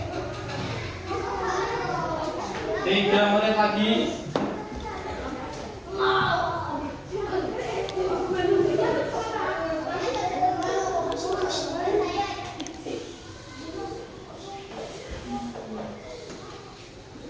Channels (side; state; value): both; identical; correlation 1.00